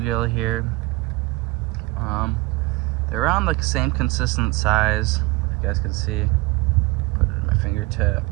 here. They're around the same consistent size, if you guys can see. Put it in my fingertip.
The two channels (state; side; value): quieter; left; 21.8 dB